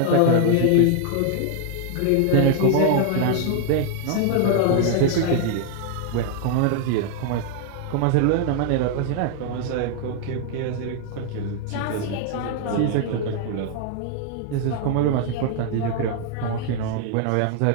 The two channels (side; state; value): both; different; correlation 0.00